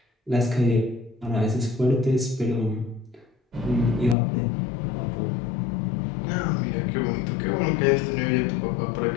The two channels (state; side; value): drops out; right; at 4.2 s